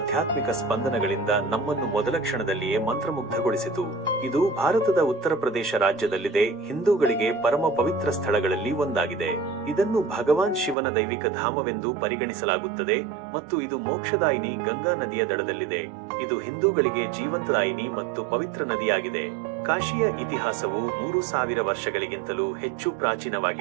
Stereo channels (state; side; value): drops out; left; at 10.8 s